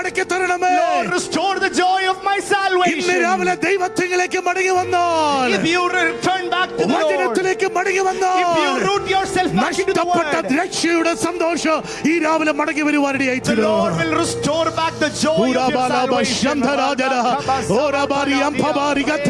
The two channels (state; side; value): identical; both; correlation 1.00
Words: തരണമേ. Lord, restore the joy of my ഇന്ന് salvation. രാവിലെ ദൈവത്തിലേക്ക് മടങ്ങി വന്നാൽ, If you return back to the Lord, വചനത്തിലേക്ക് മടങ്ങി if വന്നാൽ, you root yourself back into the നഷ്ടപ്പെട്ട word, രക്ഷയുടെ സന്തോഷം ഈ രാവിലെ മടങ്ങി the വരുവാനിടയായിത്തീരും. Lord will restore back the joy of your salvation.